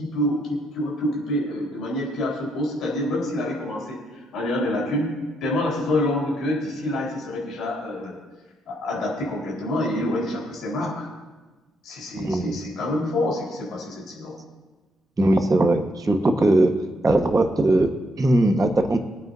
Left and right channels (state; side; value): normal; both; correlation 0.77